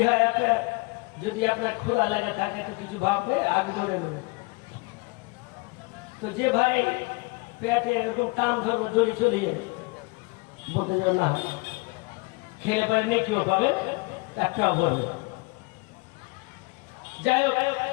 যদি আপনার ক্ষুধা লেগে থাকে তো কিছু ভাববে, আগে ধরে নেবে। তো যে ভাই পেটে এরকম টান ধরবে দড়ি চলিয়ে বলতে যাও না, খেলে পারে নেকিও পাবে, একটাও বলবে। যাই হোক,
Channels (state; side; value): quieter; right; 26.3 dB